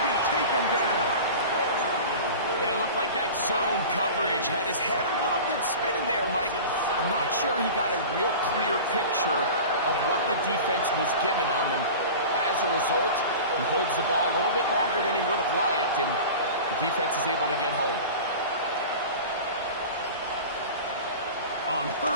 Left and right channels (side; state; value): both; inverted; correlation -0.35